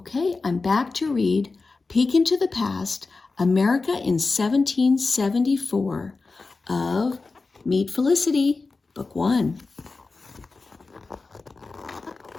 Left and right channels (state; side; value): quieter; right; 3.9 dB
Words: I'm back to read Peek into the Past, America in 1774 of Meet Felicity, Book 1.